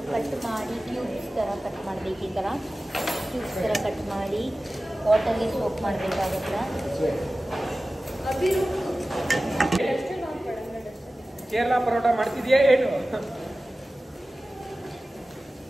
ಕಟ್ ಮಾಡಿ ಕ್ಯೂಬ್ಸ್ ಥರ ಕಟ್ ಮಾಡಬೇಕು. ಈ ಥರ ಕ್ಯೂಬ್ಸ್ ಥರ ಕಟ್ ಮಾಡಿ ವಾಟರ್ಗೆ ಸೋಪ್ ಮಾಡಬೇಕಾಗುತ್ತೆ. ಕೇರಳ ಪರೋಟ ಮಾಡ್ತಿದ್ಯಾ ಏನು?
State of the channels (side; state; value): both; normal; correlation 0.96